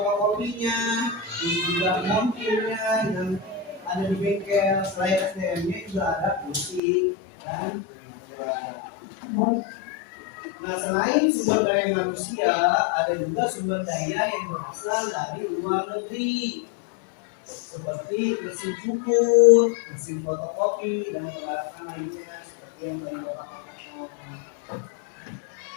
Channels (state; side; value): drops out; right; at 6.8 s